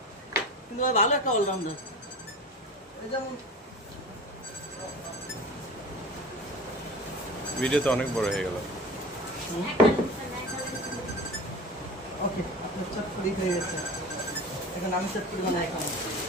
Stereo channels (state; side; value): normal; both; correlation 0.35